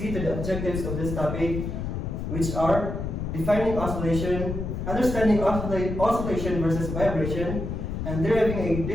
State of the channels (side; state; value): left; noise; rumble, 4 dB below the sound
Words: to the objectives of this topic, which are defining oscillation, understanding oscillation versus vibration, and deriving a